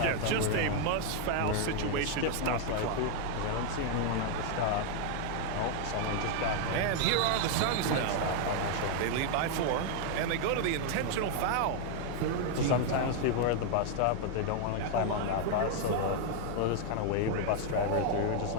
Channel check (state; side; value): different; both; correlation 0.00